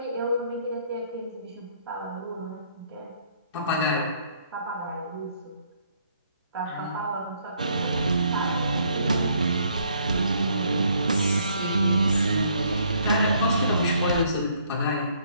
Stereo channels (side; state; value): both; inverted; correlation -0.67